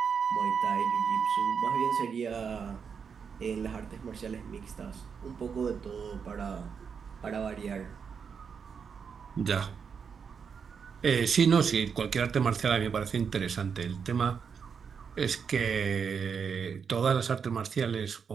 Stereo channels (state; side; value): quieter; left; 6.4 dB